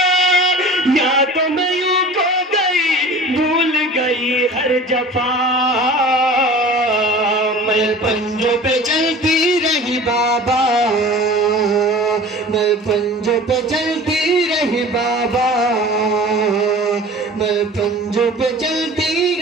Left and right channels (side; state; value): both; normal; correlation 0.41